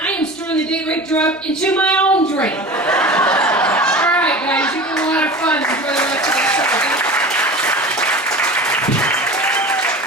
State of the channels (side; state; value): both; normal; correlation 0.35